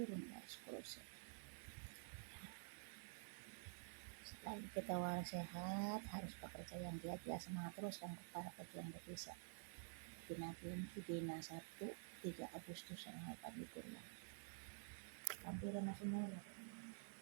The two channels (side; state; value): left; silent; digital silence